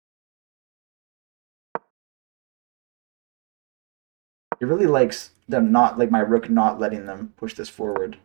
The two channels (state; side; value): quieter; left; 38.2 dB